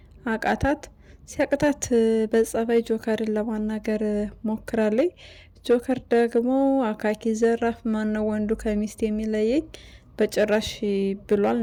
አቃታት። ሲያቅታት በጸባይ ጆከርን ለማናገር ሞክራለች። ጆከር ደግሞ አካኪ ዘራፍ፣ ማነው ወንዱ ከሚስት የሚለየኝ በጭራሽ ብሏል።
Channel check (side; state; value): both; identical; correlation 1.00